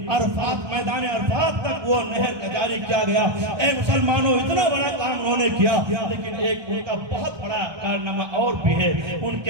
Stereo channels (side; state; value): left; late; 1.2 ms